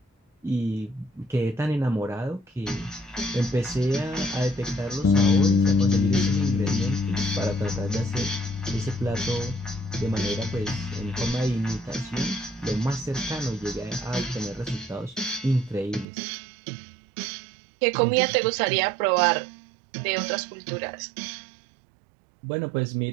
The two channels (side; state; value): left; drops out; at 16.1 s